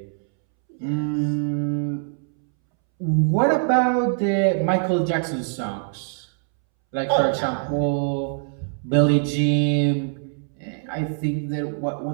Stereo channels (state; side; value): silent; left; 63 dB below the other